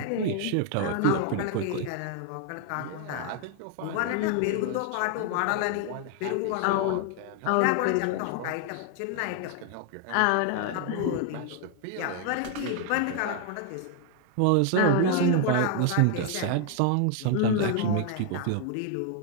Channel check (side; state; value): both; different; correlation 0.00